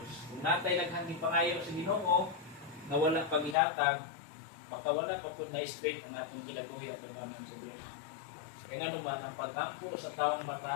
Kung natay naghangin pangayo sa Ginoo nga wala paghihatag, baka wala pa pud na straight ang atong kinabuhi at tubangan sa Dios. Kaya nga naman ang pag-ampo sa taong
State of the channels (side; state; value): right; drops out; at 3.6 s